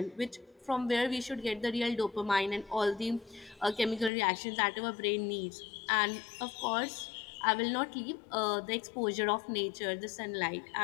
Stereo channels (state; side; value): drops out; right; at 4.1 s